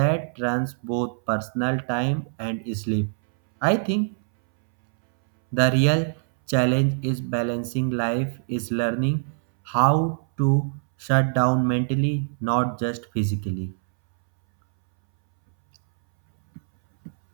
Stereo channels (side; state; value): left; silent; 63 dB below the other